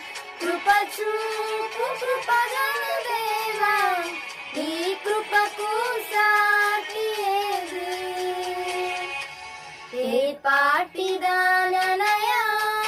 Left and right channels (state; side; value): identical; both; correlation 1.00